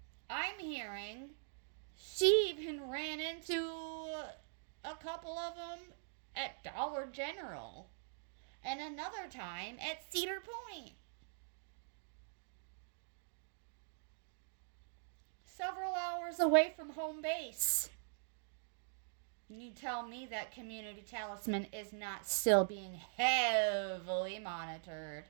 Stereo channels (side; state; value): left; silent; digital silence